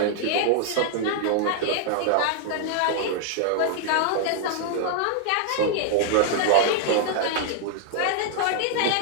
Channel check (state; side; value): different; both; correlation 0.00